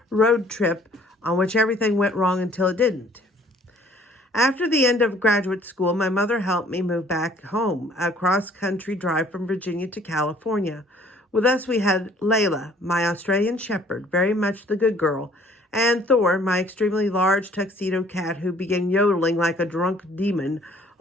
road trip on which everything went wrong until it didn't. After the end of graduate school, my mother helped me move back home, a cross-country drive from Virginia to California. With us, we had Layla, my Australian shepherd, very much the good girl, and Thor, my extremely large tuxedo cat who began yodeling like a drunk demon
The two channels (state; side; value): normal; both; correlation 0.57